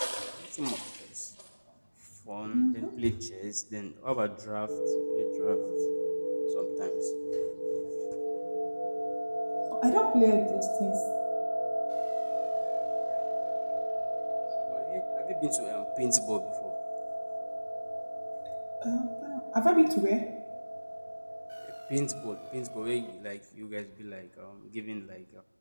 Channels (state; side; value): inverted; both; correlation -1.00